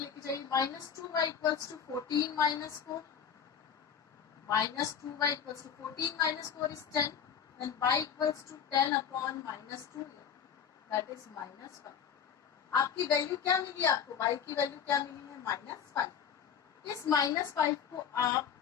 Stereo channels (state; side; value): quieter; right; 7.7 dB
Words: जाइए, minus 2y equals to 14 minus 4, minus 2y equals to 14 minus 4 is 10 and y equals to 10 upon minus 2 that is minus 5। आपकी वैल्यू क्या मिली, आपको y की वैल्यू क्या मिली है, माइनस 5। इस माइनस 5 को आप